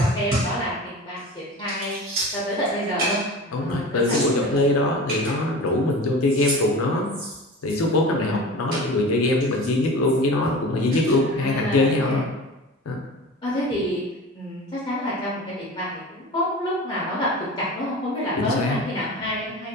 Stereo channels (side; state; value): both; normal; correlation 0.35